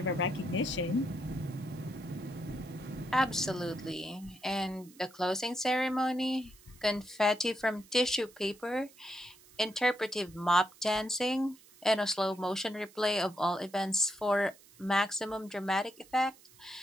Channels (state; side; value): noise; right; hiss, 25 dB below the sound